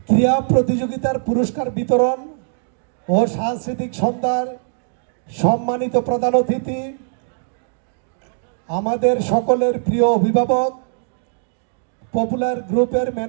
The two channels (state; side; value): silent; left; digital silence